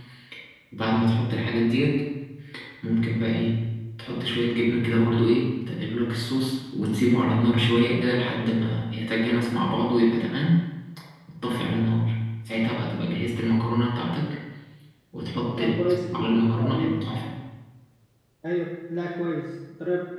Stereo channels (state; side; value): identical; both; correlation 1.00